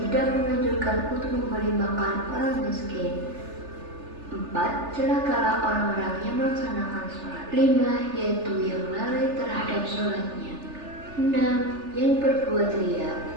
menganjurkan untuk memberi makan orang miskin. 4. Celakalah orang-orang yang melaksanakan sholat. 5. Yaitu yang lalai terhadap sholatnya. 6. Yang berbuat riya.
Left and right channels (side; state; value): left; late; 3.4 ms